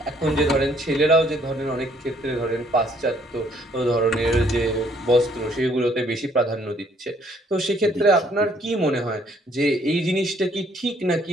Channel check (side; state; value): both; normal; correlation 0.64